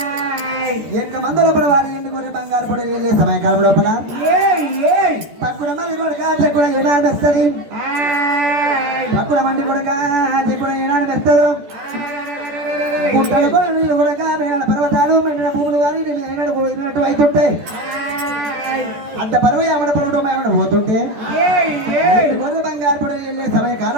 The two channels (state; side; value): late; left; 13 ms